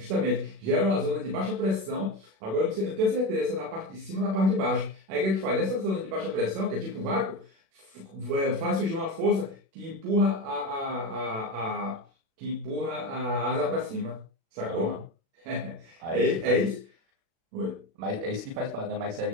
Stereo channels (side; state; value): left; late; 36 ms